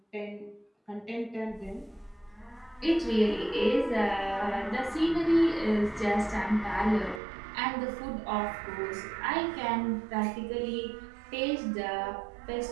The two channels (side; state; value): left; drops out; at 7.2 s